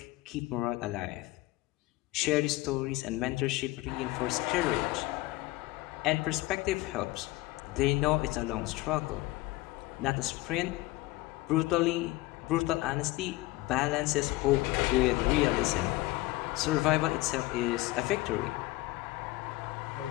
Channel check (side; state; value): right; quieter; 19.4 dB